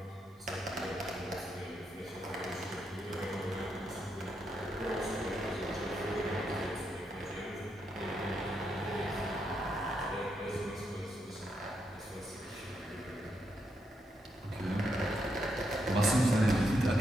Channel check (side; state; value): both; normal; correlation 0.81